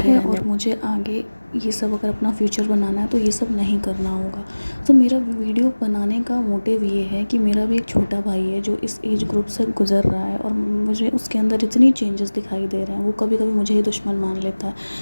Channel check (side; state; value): both; inverted; correlation -1.00